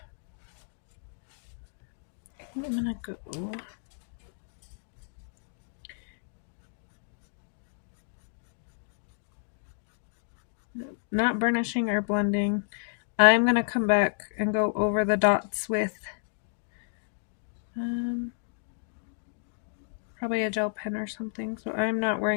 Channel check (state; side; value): silent; right; digital silence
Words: I'm gonna go not burnishing or blending. I'm gonna come back and go over the dots with probably a gel pen or something, so I'm not